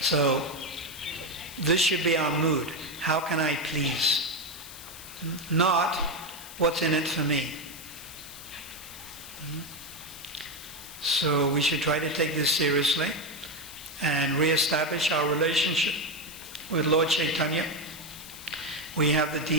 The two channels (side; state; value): left; noise; hiss, 14 dB below the sound